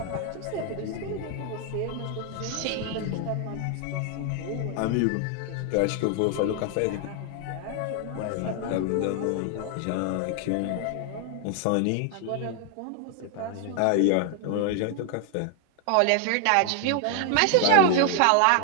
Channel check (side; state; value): both; different; correlation 0.00